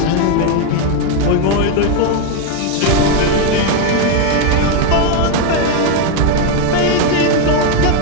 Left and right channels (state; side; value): different; both; correlation 0.02